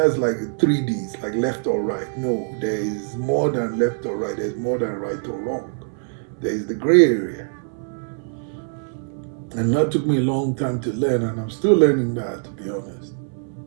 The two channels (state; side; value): silent; left; 63 dB below the other